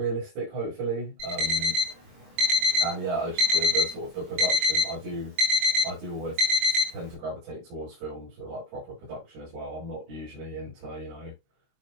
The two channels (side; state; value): left; late; 22 ms